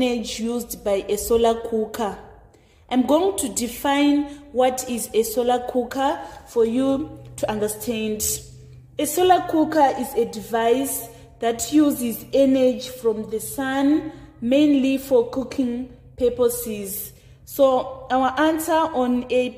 used by a solar cooker. I'm going to define what is a solar cooker for you to understand. A solar cooker is a device that uses energy from the sun, mainly for cooking purposes. So our answer on A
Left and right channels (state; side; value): identical; both; correlation 1.00